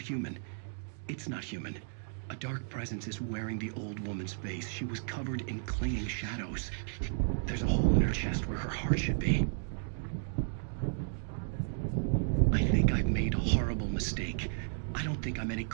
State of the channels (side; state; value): left; silent; digital silence